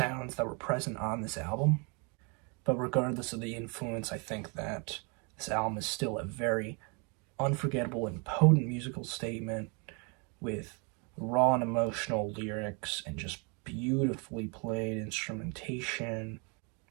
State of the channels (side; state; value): left; quieter; 33.7 dB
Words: that were present on this album. But regardless of the influence, I think that this album is still a very unforgettable and potent musical statement with raw and emotional lyrics and just beautifully played instrumentation.